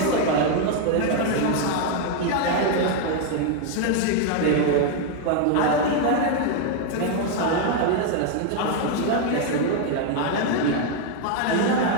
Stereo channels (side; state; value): both; different; correlation 0.00